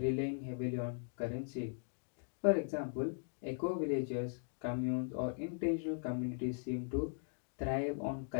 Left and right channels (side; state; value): right; silent; digital silence